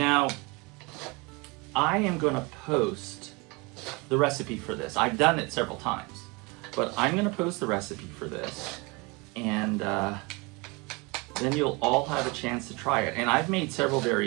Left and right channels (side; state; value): left; quieter; 27.4 dB